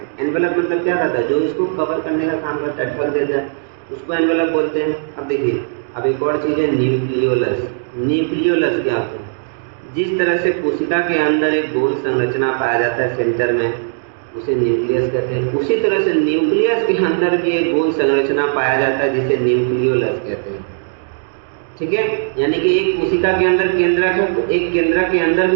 एनवेलप मतलब क्या रहता है? जो इसको कवर करने का काम करता है, ढक देता है, उसको एनवेलप बोलते हैं। अब देखिए अब एक और चीज़ है न्यूक्लियोलस। न्यूक्लियोलस क्या होता है? जिस तरह से कोशिका के अंदर एक गोल संरचना पाया जाता है सेंटर में, उसे न्यूक्लियस कहते हैं। उसी तरह से न्यूक्लियस के अंदर भी एक गोल संरचना पाया जाता है जिसे न्यूक्लियोलस कहते हैं। ठीक है, यानी कि एक कोशिका के अंदर केंद्रक है तो एक केंद्रक के अंदर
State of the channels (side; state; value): left; silent; digital silence